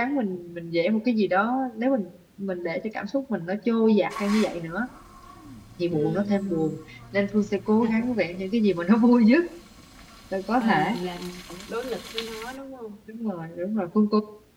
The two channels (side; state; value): both; identical; correlation 1.00